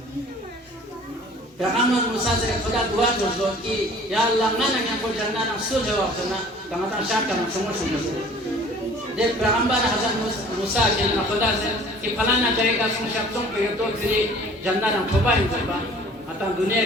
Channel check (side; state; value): both; normal; correlation 0.50